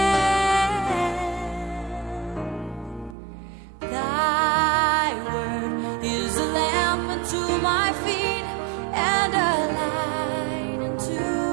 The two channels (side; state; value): left; drops out; at 3.2 s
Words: Thy word is a lamp unto my feet and a light unto